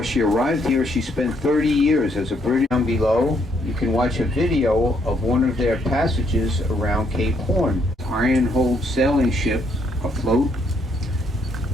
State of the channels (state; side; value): normal; both; correlation 0.71